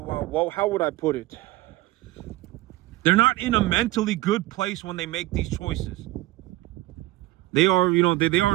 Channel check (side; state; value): left; quieter; 17.9 dB